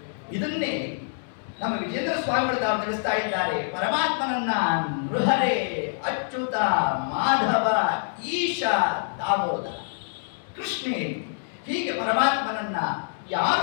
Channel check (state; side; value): silent; right; digital silence